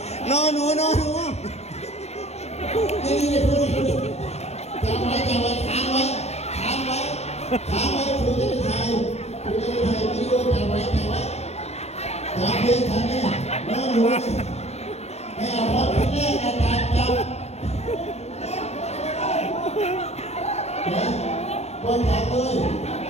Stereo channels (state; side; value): late; right; 0.31 ms